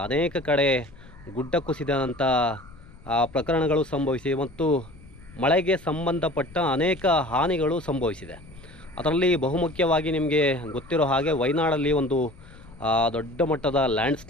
ಅನೇಕ ಕಡೆ ಗುಡ್ಡ ಕುಸಿದಂಥ ಪ್ರಕರಣಗಳು ಸಂಭವಿಸಿವೆ ಮತ್ತು ಮಳೆಗೆ ಸಂಬಂಧಪಟ್ಟ ಅನೇಕ ಹಾನಿಗಳು ಸಂಭವಿಸಿದೆ. ಅದರಲ್ಲಿ ಬಹುಮುಖ್ಯವಾಗಿ ನಿಮಗೆ ಗೊತ್ತಿರೋ ಹಾಗೆ ವಯನಾಡಲ್ಲಿ ಒಂದು ದೊಡ್ಡ ಮಟ್ಟದ ಲ್ಯಾಂಡ್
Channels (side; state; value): left; noise; rumble, 22 dB below the sound